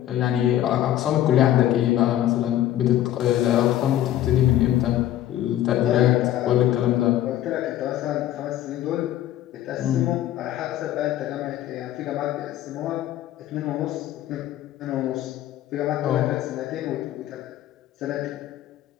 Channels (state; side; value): quieter; right; 12.8 dB